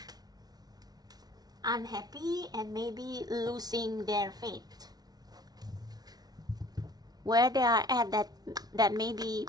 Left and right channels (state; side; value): late; left; 0.19 ms